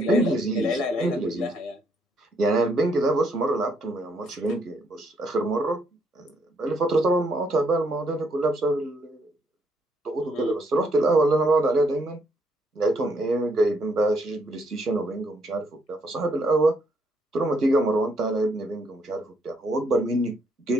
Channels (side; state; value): both; normal; correlation 0.72